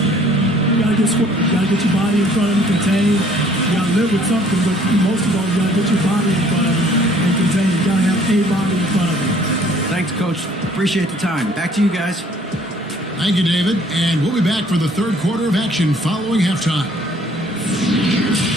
You gotta get square. You gotta get your body in front of him, contain. You gotta live with something, but most of all, you gotta get your body in front of him and contain. You gotta have a body in front of him. Thanks, Coach. Appreciate the time. Back to you guys. Thank you, David. And we'll be back for the third quarter of action following halftime.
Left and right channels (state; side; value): normal; both; correlation 0.58